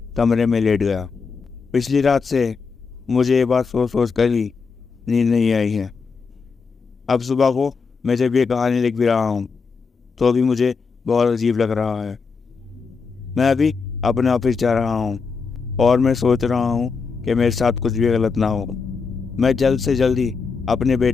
गया। पिछली रात से मुझे ये बात सोच कर ही नींद नहीं आई है। अब सुबह को मैं जब ये कहानी लिख भी रहा हूँ तो भी मुझे बहुत अजीब लग रहा है। मैं अभी अपने ऑफिस जा रहा हूँ और मैं सोच रहा हूँ कि मेरे साथ कुछ भी गलत ना हो। मैं जल्द से जल्द ही अपने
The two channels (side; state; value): right; quieter; 5.0 dB